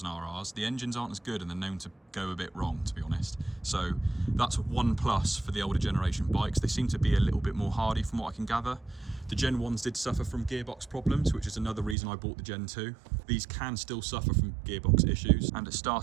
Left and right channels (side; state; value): left; drops out; at 12.0 s